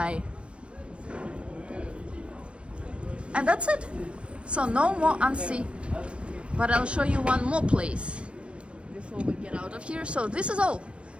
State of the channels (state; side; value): late; left; 0.059 ms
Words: And that's it. So no more Annecy, but I'll show you one more place before we get out of here. So this is all.